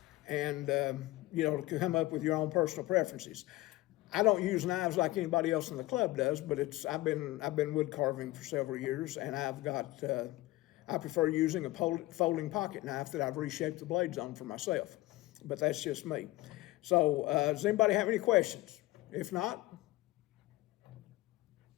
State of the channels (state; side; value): quieter; right; 18.7 dB